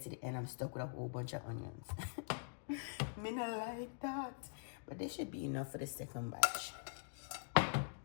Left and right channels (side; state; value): right; silent; digital silence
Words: to the end, I'm stuck with a whole bunch of onions. Me not like that. But this should be enough for the second batch.